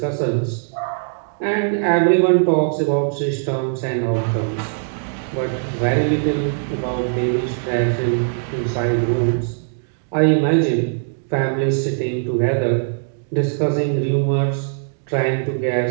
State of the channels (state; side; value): silent; left; digital silence